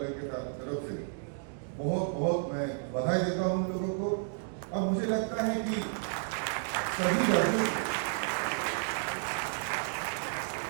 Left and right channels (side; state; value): left; silent; digital silence